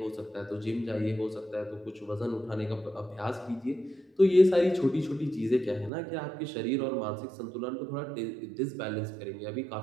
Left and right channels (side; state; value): left; drops out; at 5.9 s